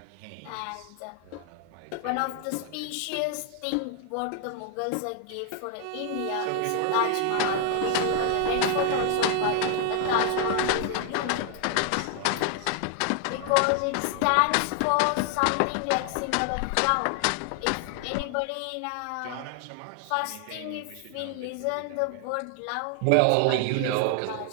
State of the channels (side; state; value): both; different; correlation 0.00